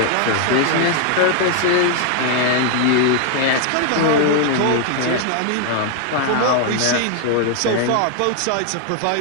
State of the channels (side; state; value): both; different; correlation 0.00